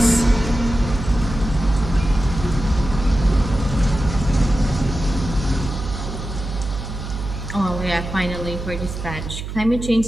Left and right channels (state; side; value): noise; right; hum, 7 dB below the sound